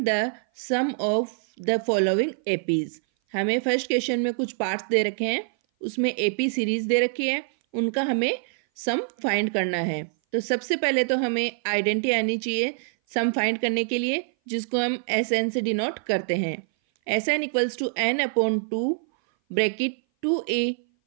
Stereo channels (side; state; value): left; silent; 58 dB below the other